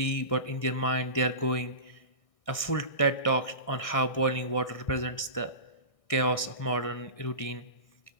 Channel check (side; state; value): right; late; 1.6 ms